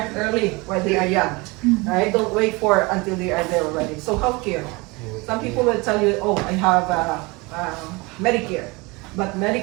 early while they are young, right? Don't wait for until they are there already. So healthcare. Some people will tell you, oh, I have Medicare. But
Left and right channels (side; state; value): left; quieter; 25.5 dB